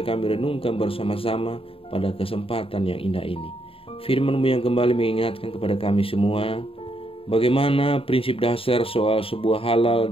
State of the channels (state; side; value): late; right; 0.27 ms